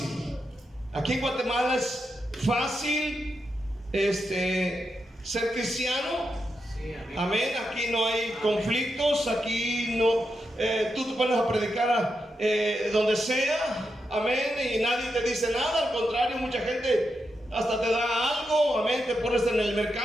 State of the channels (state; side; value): normal; both; correlation 0.86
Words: Aquí en Guatemala es fácil ser cristiano. Sí, amén. Aquí no hay conflictos. Aquí no, tú te pones a predicar donde sea. Amén. Y nadie te dice nada. Al contrario, mucha gente hasta te da algo. Amén. Te pones en el